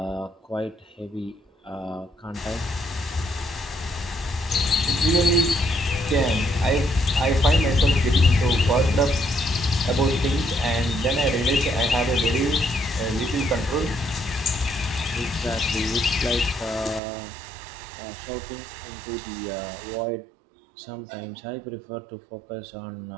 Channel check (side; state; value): left; drops out; at 17.0 s